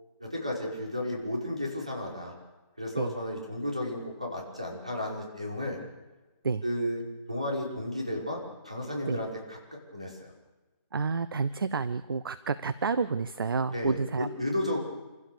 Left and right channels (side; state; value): both; inverted; correlation -0.70